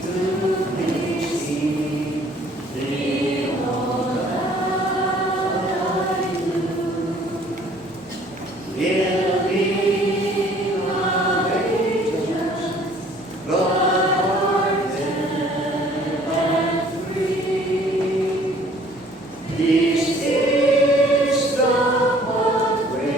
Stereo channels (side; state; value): both; normal; correlation 0.56